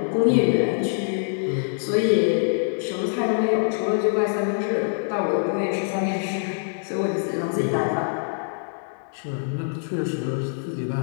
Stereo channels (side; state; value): right; silent; digital silence